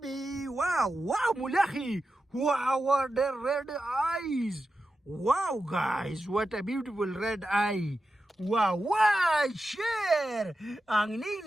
wow wow mulahi wow what the red eyes. Wow, guys, what a beautiful red eye. Wow, wow, share. Ang ning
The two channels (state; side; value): normal; both; correlation 0.91